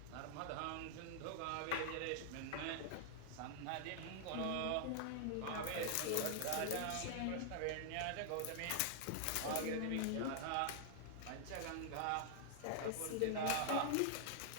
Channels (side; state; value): both; different; correlation -0.01